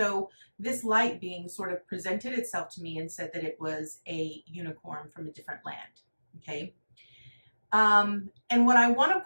this light being sort of presented itself to me and said that it was a unicorn from a different land. Okay. And what I want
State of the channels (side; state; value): both; inverted; correlation -1.00